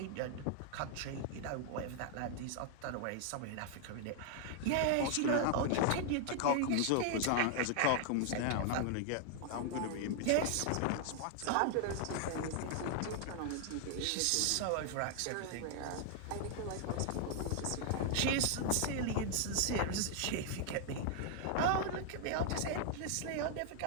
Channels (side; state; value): both; different; correlation 0.00